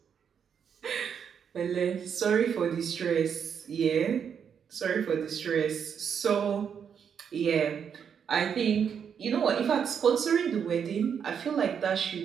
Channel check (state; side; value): quieter; left; 7.5 dB